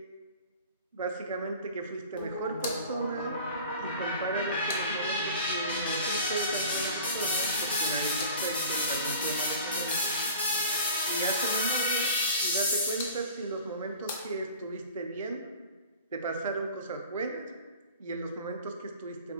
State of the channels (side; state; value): both; inverted; correlation -0.42